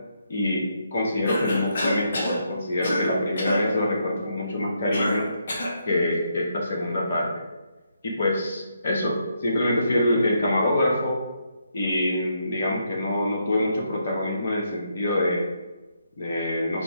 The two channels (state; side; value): inverted; both; correlation -0.77